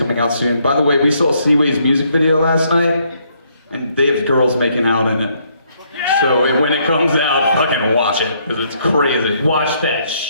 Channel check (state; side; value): inverted; both; correlation -0.70